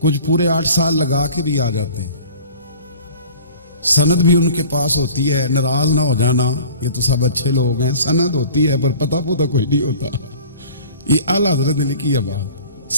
कुछ पूरे 8 साल लगा के भी आ जाते हैं, सनद भी उनके पास होती है, नाराज ना हो जाना, ये तो सब अच्छे लोग हैं। सनद होती है पर पता पुता कोई नहीं होता। ये आला हजरत ने लिखी है बात।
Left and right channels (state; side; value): inverted; both; correlation -0.46